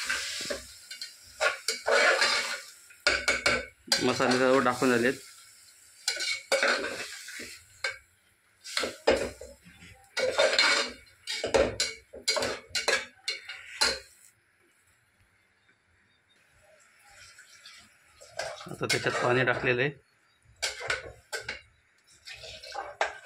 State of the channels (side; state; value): both; identical; correlation 1.00